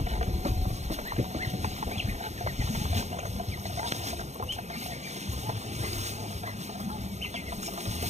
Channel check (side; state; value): left; late; 0.33 ms